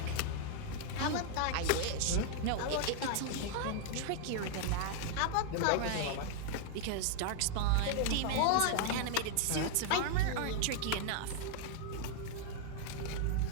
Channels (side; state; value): both; different; correlation 0.00